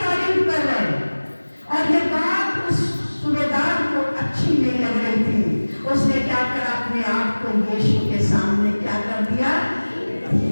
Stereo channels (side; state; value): both; inverted; correlation -1.00